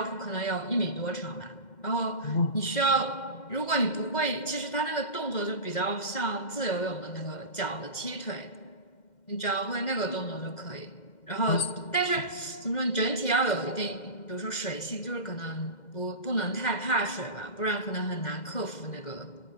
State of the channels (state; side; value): late; right; 2.1 ms